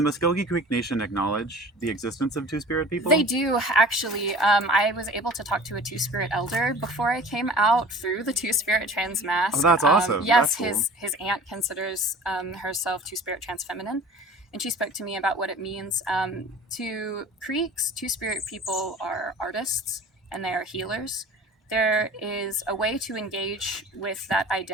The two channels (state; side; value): normal; both; correlation 0.43